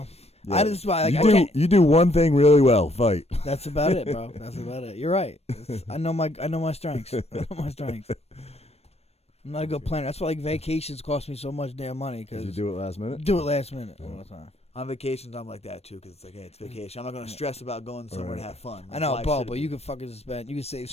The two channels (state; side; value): late; right; 0.30 ms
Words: Yeah. I just like you do one thing really well, fight. That's about it, bro. That's about it. You're right. I know my strengths. I know my strengths. I'm not a good planner. That's why like vacations cost me so much damn money. Because you do it last minute. Do it last minute all the time. On vacations, I'm like that too, because it's like, hey, it's vacation. I'm not gonna stress about going somewhere to have fun. I know, bro, but you can fucking spend. You can save